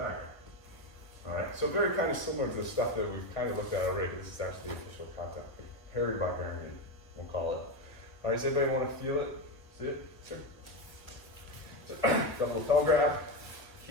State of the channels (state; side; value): late; right; 1.7 ms